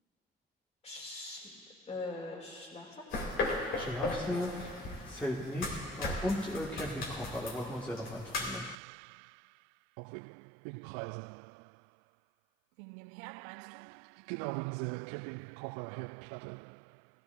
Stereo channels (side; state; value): left; drops out; at 8.8 s